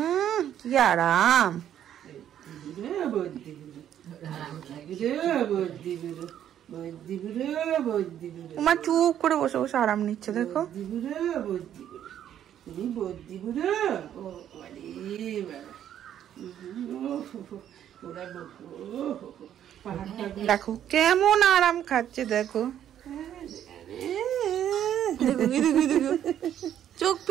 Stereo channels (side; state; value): left; quieter; 10.4 dB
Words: কি আরাম। তোমার চুপ করে বসে বসে আরাম নিচ্ছে দেখো। দেখো কেমন আরাম খাচ্ছে, দেখো চোখ